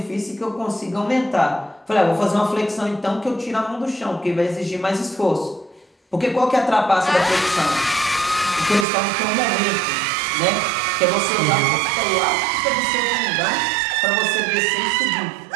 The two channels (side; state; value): left; drops out; at 8.8 s